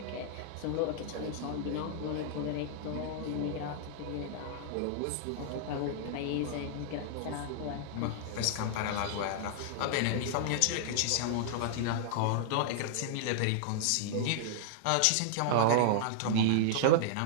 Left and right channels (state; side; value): different; both; correlation -0.01